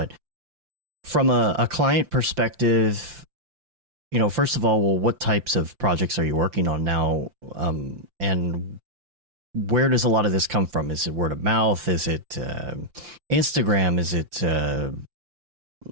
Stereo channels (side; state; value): left; late; 5.8 ms